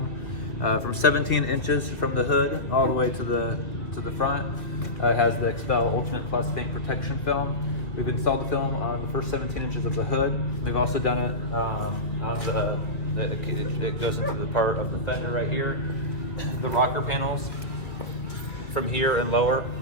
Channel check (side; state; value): right; late; 2.5 ms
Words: From 17 inches from the hood all the way to the front. It has the Expel Ultimate Plus paint protection film. We've installed the film on the first 17 inches of the hood. We've also done it on it goes into the part of the fender right here. The rocker panels from here and lower